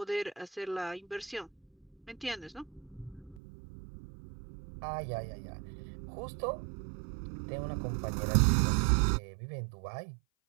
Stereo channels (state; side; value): drops out; left; at 3.4 s